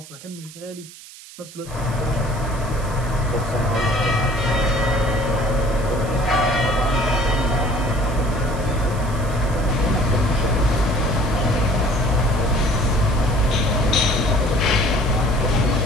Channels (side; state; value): right; noise; hiss, 18 dB below the sound